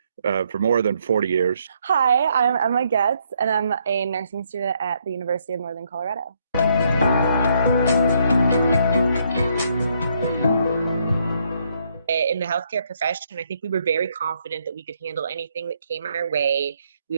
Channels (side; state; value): both; inverted; correlation -0.72